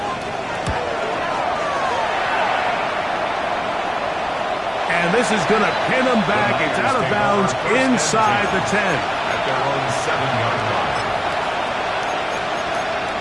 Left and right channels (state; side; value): identical; both; correlation 1.00